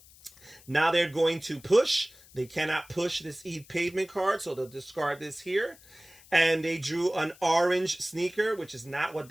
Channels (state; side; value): noise; left; hiss, 24 dB below the sound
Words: Now they're going to push. They cannot push this Eat Pavement card, so they'll discard this here. And they drew an orange sneaker, which is not what